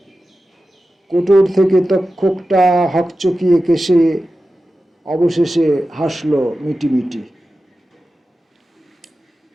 কোটর থেকে তক্ষকটা হকচকিয়ে কেশে অবশেষে হাসলো মিটিমিটি।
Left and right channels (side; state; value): both; normal; correlation 0.93